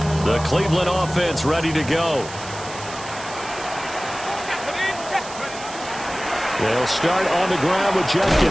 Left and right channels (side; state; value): right; noise; hiss, 14 dB below the sound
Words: The Cleveland offense ready to go. They'll start on the ground with